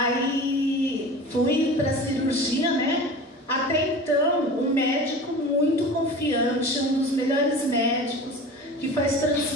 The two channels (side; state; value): both; normal; correlation 0.36